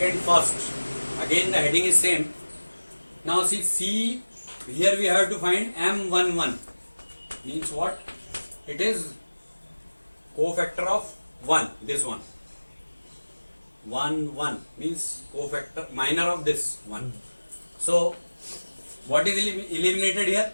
first. Again the heading is same. Now see C, here we have to find M11. Means what? It is cofactor of 1, this one. 1, 1 means cofactor, minor of this 1. So what is eliminated here?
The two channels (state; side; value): inverted; both; correlation -1.00